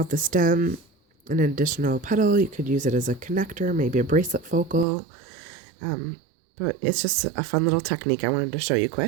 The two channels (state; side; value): drops out; left; at 4.9 s